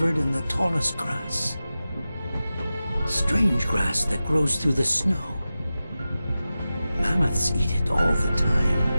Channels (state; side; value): inverted; both; correlation -0.94